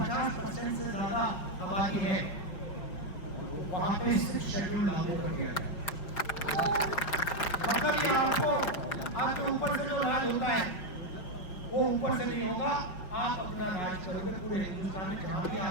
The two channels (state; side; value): late; right; 5.6 ms